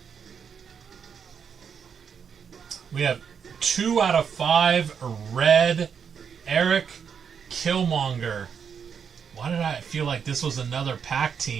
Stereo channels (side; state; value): left; quieter; 7.0 dB